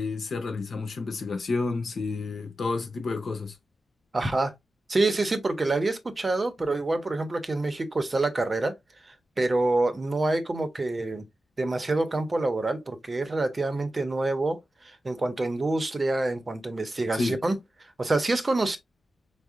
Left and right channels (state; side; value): normal; both; correlation 0.93